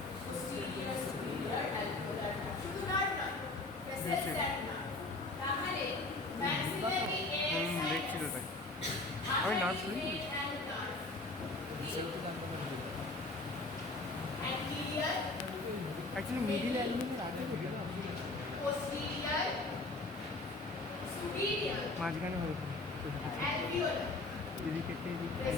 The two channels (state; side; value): quieter; right; 3.0 dB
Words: posterior superior alveolar nerve. শুধু nerve নয়, vessels and nerve. তাহলে maxillary air দেখছিল sinus, তাই আমি nerve শুনি artery and nerve. সেটা জানতে পারি Anterior, অ্যাকচুয়ালি মিডিল অ্যালবিনের আগে কোথায় posterior, superior, মাঝখানে হতো alveolar এদিকে একটা এদিকে